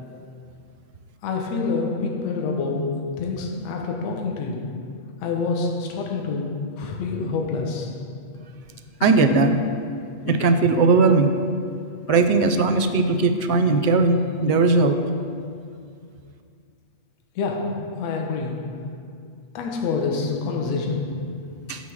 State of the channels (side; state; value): right; late; 8.3 ms